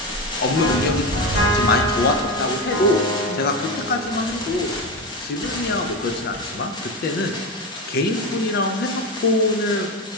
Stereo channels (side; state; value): both; normal; correlation 0.18